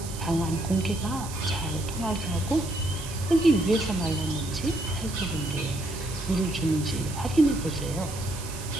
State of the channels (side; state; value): right; noise; hiss, 12 dB below the sound